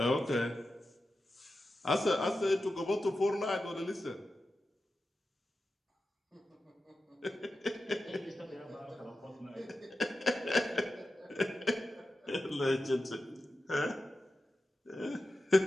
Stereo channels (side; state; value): both; normal; correlation 0.92